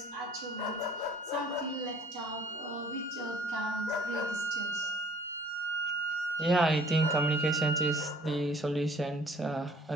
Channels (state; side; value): normal; both; correlation 0.53